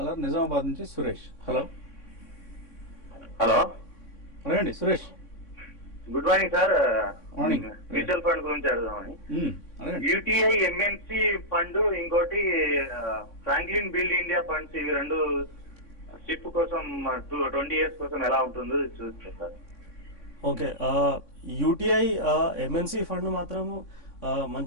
Nizamabad నుంచి Suresh. Hello hello, అడగండి Suresh. Good morning sir. Morning. Mutual fund గురించి అడుగుదామని. అడగండి. UTI MNC fund, ఇంకోటి ఫ్రాంక్లిన్ బిల్డ్ ఇండియా ఫండ్స్, ఇవి రెండు షిప్ కోసం 20 years కోసం ఎలా ఉంటుందో చూస్తే sir. Okay, UTI MNC fund మాత్రము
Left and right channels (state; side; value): late; right; 3.6 ms